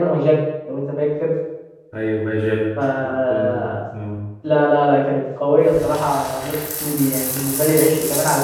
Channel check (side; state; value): both; identical; correlation 1.00